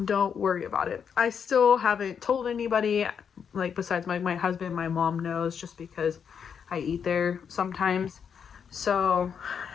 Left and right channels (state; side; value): quieter; right; 7.2 dB